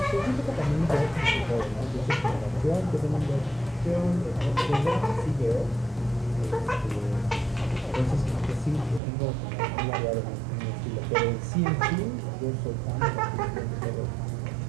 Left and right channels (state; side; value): drops out; left; at 9.0 s